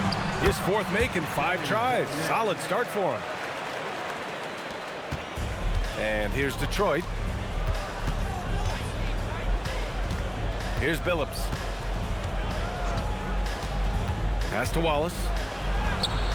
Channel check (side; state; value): both; identical; correlation 1.00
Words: His 4th make in 5 tries. Solid start for him. And here's Detroit. Here's Billups. Pass to Wallace.